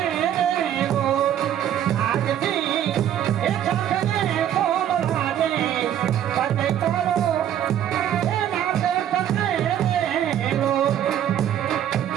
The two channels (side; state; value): left; quieter; 10.6 dB